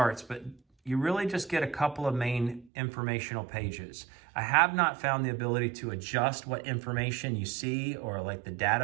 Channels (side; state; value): left; drops out; at 2.7 s